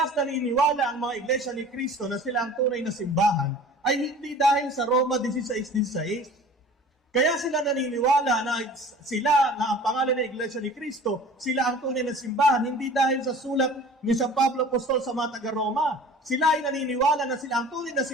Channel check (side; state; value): both; normal; correlation 0.43